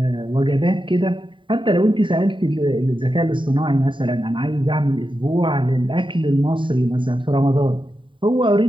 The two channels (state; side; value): late; left; 0.24 ms